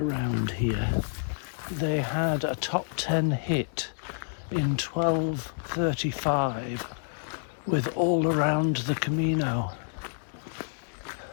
here. They had a top 10 hit in 1235 with All Around the Camino,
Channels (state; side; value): silent; right; 59 dB below the other